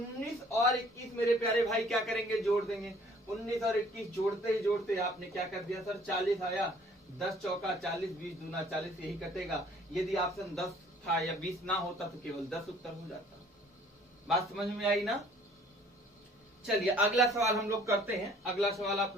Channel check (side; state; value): both; normal; correlation 0.56